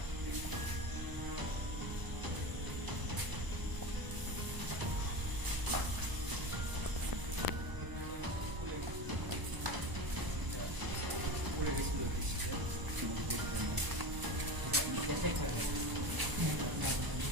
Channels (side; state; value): left; late; 1.0 ms